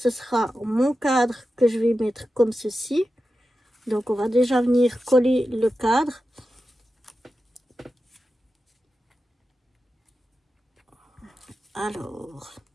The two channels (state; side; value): normal; both; correlation 0.92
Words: sera mon cadre que je vais mettre comme ceci. Donc on va déjà venir coller le cadre. Alors,